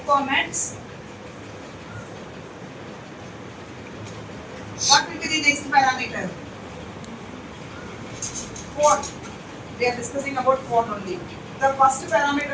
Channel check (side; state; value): both; identical; correlation 1.00